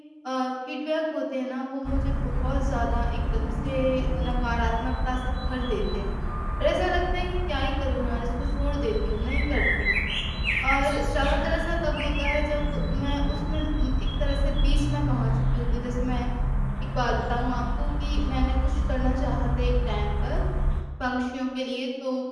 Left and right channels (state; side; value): identical; both; correlation 1.00